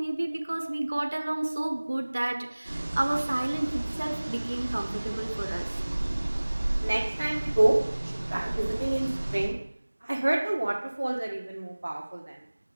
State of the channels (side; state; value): both; inverted; correlation -1.00